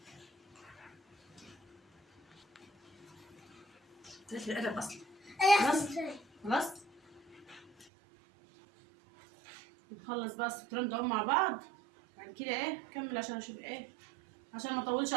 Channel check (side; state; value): left; drops out; at 7.9 s